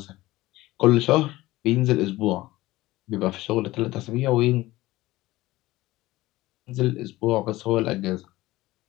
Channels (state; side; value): quieter; right; 18.0 dB